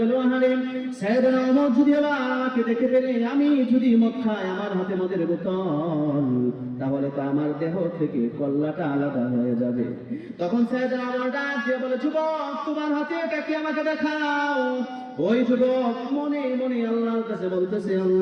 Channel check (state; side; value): identical; both; correlation 1.00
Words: আহারে সাইয়েদনা ওমর যদি আমাকে দেখে ফেলে, আমি যদি মদ খাই, আমার হাতে মদের বোতল, তাহলে তো আমার দেহ থেকে কল্লাটা আলাদা হয়ে যাবে। তখন সাইয়েদনা ওমর ডাক দিয়ে বলে, যুবক তোমার হাতে এটা কি, আমাকে দেখাও। ওই যুবক মনে মনে আল্লাহর কাছে বলতেছে,